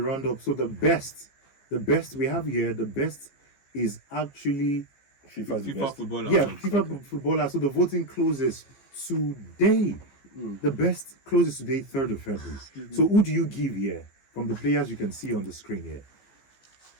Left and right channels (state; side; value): late; right; 15 ms